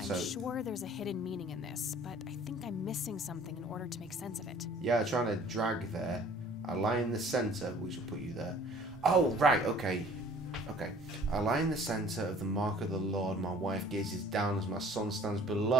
I'm sure there's a hidden meaning in this, but I think I'm missing something in order to make sense of it. Yeah, trying to drag there. I lie in the center, which will put you there. Oh, right. Okay. Okay. I lie in the center of the mark of the Lord. My wife gazes down as my son stands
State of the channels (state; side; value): normal; both; correlation 0.52